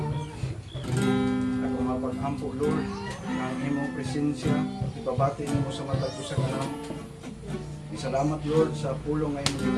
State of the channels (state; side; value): identical; both; correlation 1.00